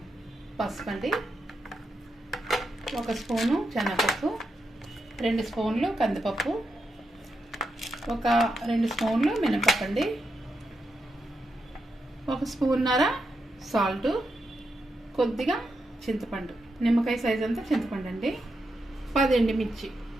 పసుపు అండి, 1 స్పూను శనగపప్పు, 2 స్పూన్లు కందిపప్పు, 2 స్పూన్లు మినపప్పు అండి, 1 స్పూన్నర సాల్ట్, కొద్దిగా చింతపండు, నిమ్మకాయ సైజ్ అంతా చింతపండు అండి, 10 ఎండుమిర్చి,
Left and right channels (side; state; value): both; normal; correlation 0.84